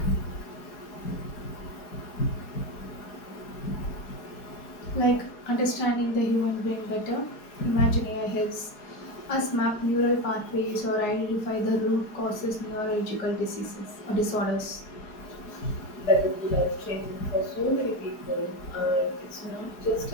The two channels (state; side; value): late; right; 4.7 ms